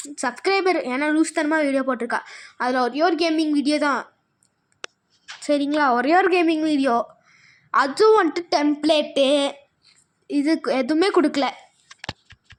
சப்ஸ்கிரைபர். ஏன்னா லூஸ் தனமாக வீடியோ போட்டிருக்கா. அதில் ஒரே ஒரு கேமிங் வீடியோ தான், சரிங்களா? ஒரே ஒரு கேமிங் வீடியோ, அதுவும் வந்துட்டு டெம்ப்ளேட்டு இது எதுவுமே கொடுக்கல.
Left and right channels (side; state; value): both; identical; correlation 1.00